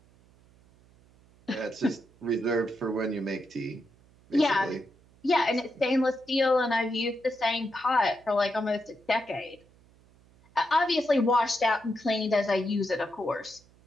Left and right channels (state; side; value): noise; right; hum, 29 dB below the sound